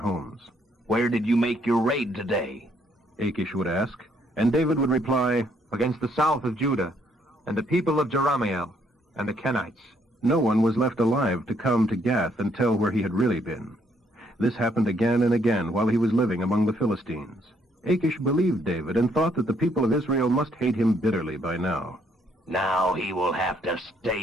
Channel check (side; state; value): both; normal; correlation 0.69